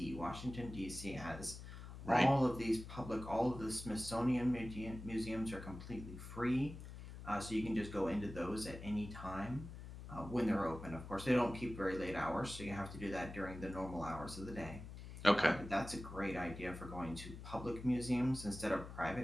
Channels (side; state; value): left; noise; hum, 11 dB below the sound